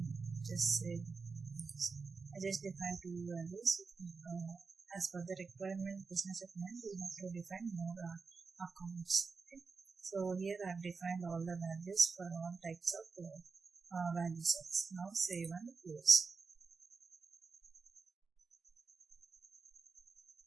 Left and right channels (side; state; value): left; quieter; 4.7 dB